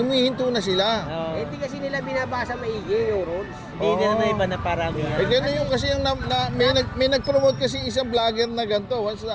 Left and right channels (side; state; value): both; identical; correlation 1.00